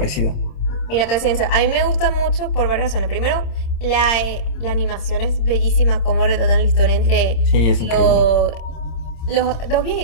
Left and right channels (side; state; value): right; late; 26 ms